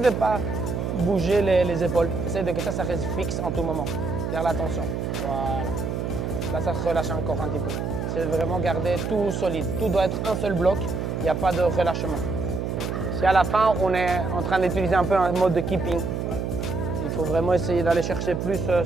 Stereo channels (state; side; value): noise; right; hum, 2 dB below the sound